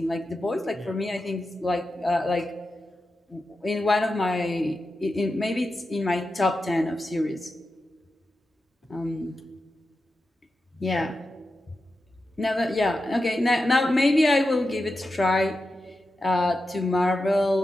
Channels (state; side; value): normal; both; correlation 0.90